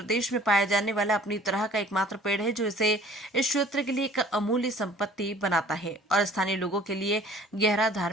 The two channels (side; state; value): both; normal; correlation 0.51